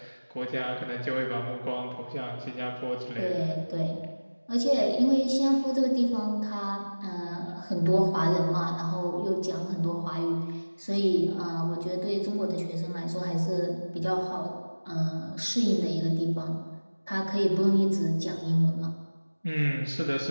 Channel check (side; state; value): both; inverted; correlation -1.00